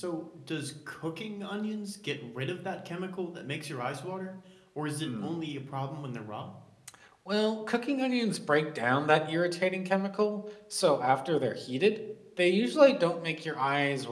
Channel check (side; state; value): both; identical; correlation 1.00